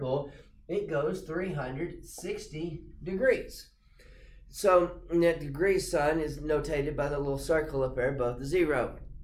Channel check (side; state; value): both; identical; correlation 1.00